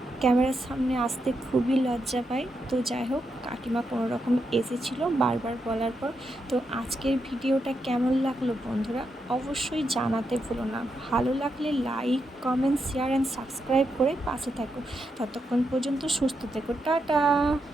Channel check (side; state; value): both; normal; correlation 0.84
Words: ক্যামেরার সামনে আসতে খুবই লজ্জা পায়। তো যাই হোক, কাকিমা কোনো রকম এসেছিলো বারবার বলার পর। তো আজকের ভিডিওটা কেমন লাগলো বন্ধুরা অবশ্যই জানাতে ভুলো না। ভালো লাগলে like, comment, share and subscribe করে পাশে থাকো। ততক্ষণ পর্যন্ত সুস্থ থেকো। টাটা।